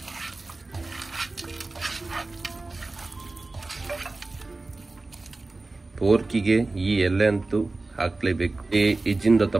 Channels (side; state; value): left; quieter; 3.3 dB